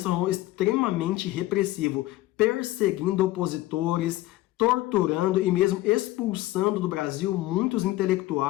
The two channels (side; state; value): right; quieter; 17.0 dB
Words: tornou extremamente repressivo, perseguindo opositores, torturando e mesmo expulsando do Brasil muitos